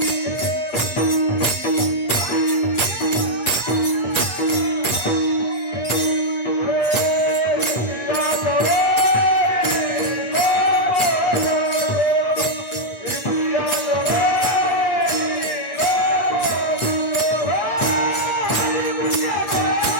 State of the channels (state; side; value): late; right; 8.5 ms